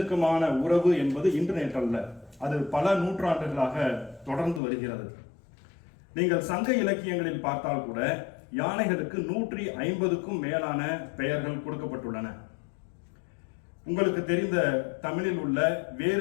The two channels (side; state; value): right; drops out; at 4.6 s